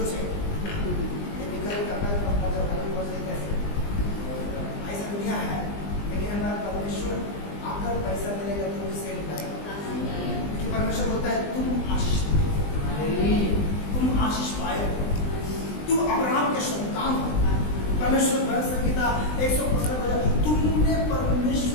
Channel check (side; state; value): right; late; 20 ms